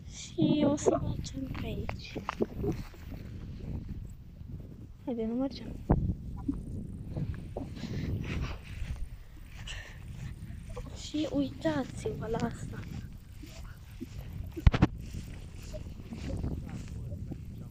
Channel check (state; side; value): identical; both; correlation 1.00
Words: Și o să mergem pe aici. Haide, nu mergem. Și uitați-vă la asta.